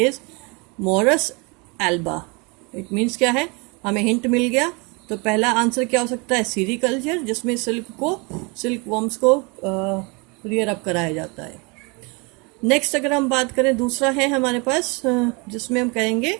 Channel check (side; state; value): left; quieter; 29.8 dB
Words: Morris Elba. It means क्या है, हमें हिंट मिल गया। तो पहला आंसर क्या हो सकता है, सीरीकल्चर, जिसमें सिल्क वॉर्म्स को रियर अप कराया जाता है। नेक्स्ट अगर हम बात करें, दूसरा है हमारे पास, जिसमें हम कहेंगे